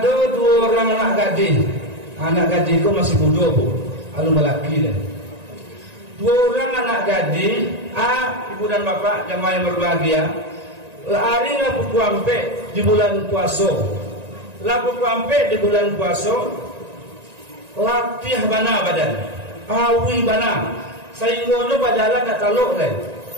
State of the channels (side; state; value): left; late; 1.9 ms